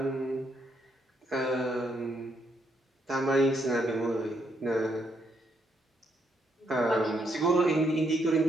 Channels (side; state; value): both; normal; correlation 0.75